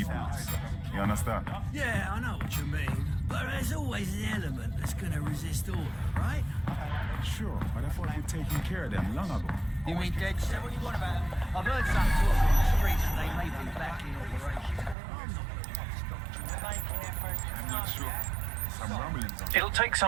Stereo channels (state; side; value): drops out; left; at 15.0 s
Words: boots. You understand? Yeah, I know what you mean. But there's always an element that's gonna resist order, right? Sure, but I thought we'd taken care of them long ago. You mean DedSec? What do you want about them? I've heard some talk on the streets that they may be back in operation. I'm not sure. Some rumblings on It'll take